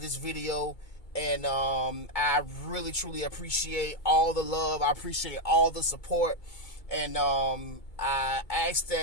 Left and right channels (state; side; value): late; right; 2.2 ms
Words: video. And I really, truly appreciate all the love. I appreciate all the support. And I ask